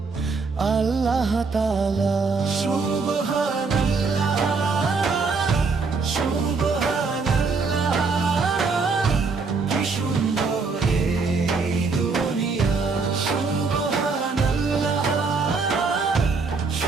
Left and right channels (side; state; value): left; quieter; 4.5 dB